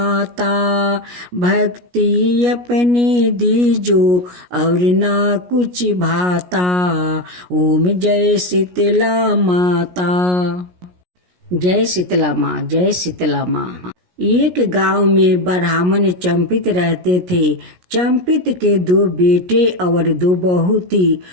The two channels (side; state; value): left; late; 17 ms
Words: भक्ति अपने दीजो, और ना कुछ भाता। ओम जय शीतला माता। जय शीतला माँ, जय शीतला माँ। एक गांव में ब्राह्मण चंपित रहते थे। चंपित के 2 बेटे और 2 बहू थी।